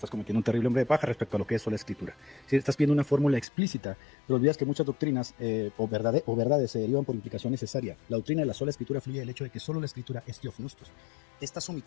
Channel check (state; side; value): drops out; right; at 3.5 s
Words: cometiendo un terrible hombre de paja respecto a lo que es sola escritura. Si estás pidiendo una fórmula explícita, pero olvidas que muchas doctrinas o verdades se derivan por implicación necesaria. La doctrina de la sola escritura fluye del hecho de que solo la escritura es teofnostos. Estás